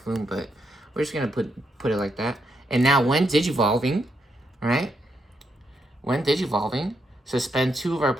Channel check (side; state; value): both; normal; correlation 0.79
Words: but we're just gonna put it like that. And now when Digivolving, right? When Digivolving, suspend 2 of our